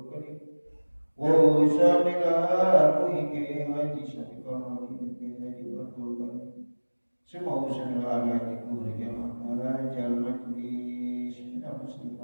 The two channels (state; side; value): inverted; both; correlation -1.00